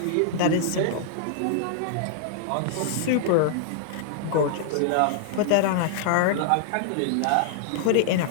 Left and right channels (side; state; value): both; different; correlation -0.01